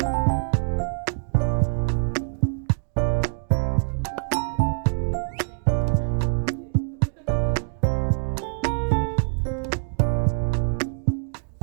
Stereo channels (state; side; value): silent; left; 62 dB below the other